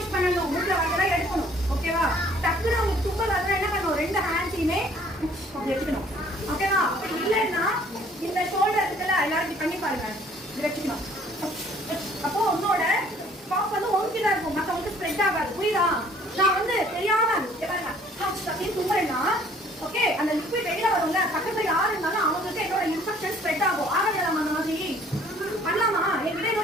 பண்ணனும் மூக்குல வரதெல்லாம் எடுக்கணும் ஓகேவா டக்குனு உங்களுக்கு தும்மல் வரதா என்ன பண்ணனும் ரெண்டு ஹேண்ட்ஸையுமே அப்படி வெச்சுக்கணும் ஓகேவா அப்படி இல்லன்னா இந்த ஷோல்டர் இருக்குல எல்லாரும் பண்ணி பாருங்க இது வெச்சுக்கணும் அப்போ உன்னோட காஃப் வந்து ஒன்கிட்ட இருக்கும் மத்தவங்களுக்கு ஸ்ப்ரெட் ஆகாது புரியுதா நான் வந்து தெரியாம பாருங்க அப்படியே தும்முறேன்னா ஓகே அந்த லிக்விட் வெளியில வரும்ல பக்கத்துல யாரு இருந்தாலும் அவங்களுக்கு என்னோட இன்ஃபெக்ஷன் ஸ்ப்ரெட் ஆகும் ஆகலாம் அந்த மாதிரி பண்ணலாமா என்கிட்ட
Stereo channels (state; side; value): normal; both; correlation 0.57